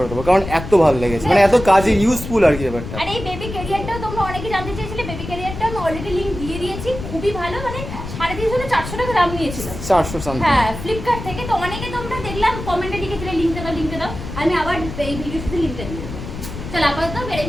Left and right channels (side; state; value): left; noise; rumble, 9 dB below the sound